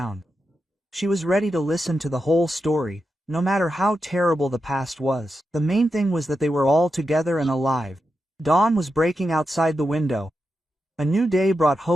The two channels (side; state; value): both; normal; correlation 0.88